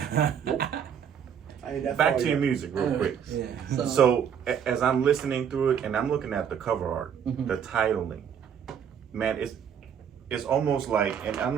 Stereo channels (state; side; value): quieter; left; 8.1 dB